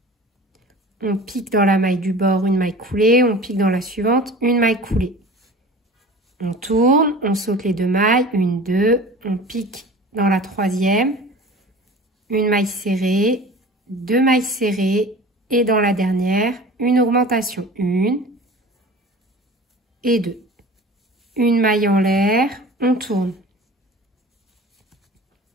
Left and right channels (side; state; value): both; normal; correlation 0.40